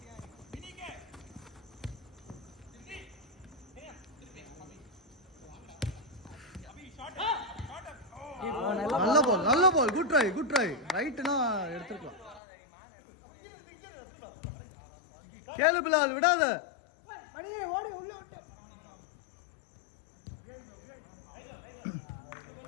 நல்ல பால் குட் ட்ரை ரைட்னா எடுத்துக்கலாம். கேளு பிலால் விடாத. ஓடி உள்ள விட்டு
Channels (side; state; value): right; drops out; at 12.4 s